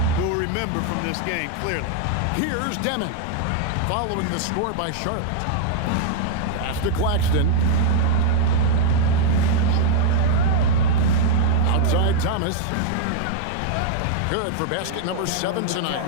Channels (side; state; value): both; different; correlation -0.01